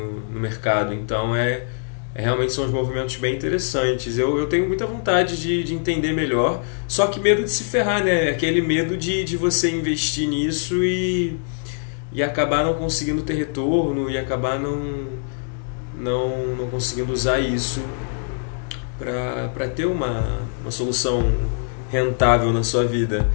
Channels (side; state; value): right; silent; digital silence